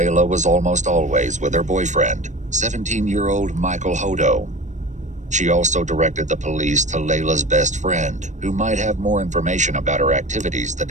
was almost always with her boyfriend, 17-year-old Michael Hodo. She also directed the police to Layla's best friend, who might have more information about her activities the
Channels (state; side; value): late; left; 0.35 ms